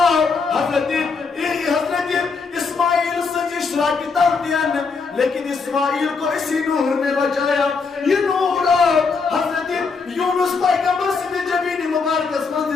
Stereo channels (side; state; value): right; quieter; 4.8 dB